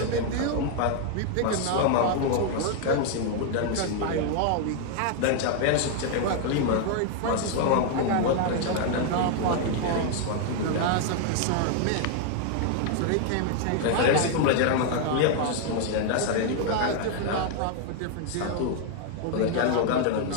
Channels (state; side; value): different; both; correlation 0.00